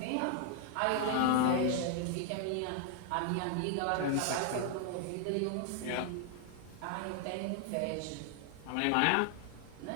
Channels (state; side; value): different; both; correlation 0.00